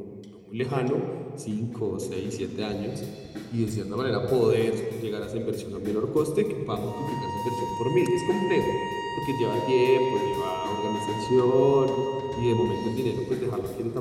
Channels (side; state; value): both; identical; correlation 1.00